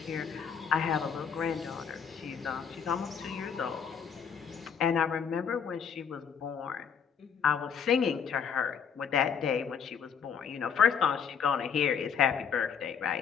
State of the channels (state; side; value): quieter; right; 7.0 dB